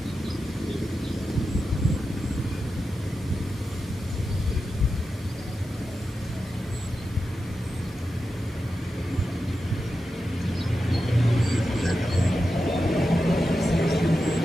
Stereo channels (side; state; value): both; normal; correlation 0.90